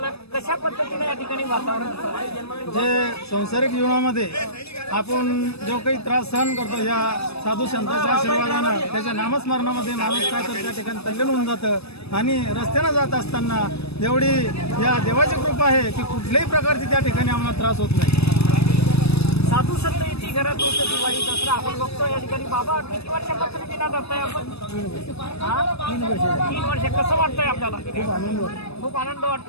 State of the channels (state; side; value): late; right; 0.78 ms